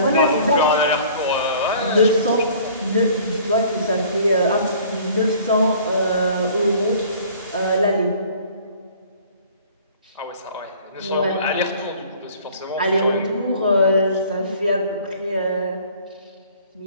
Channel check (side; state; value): both; inverted; correlation -0.51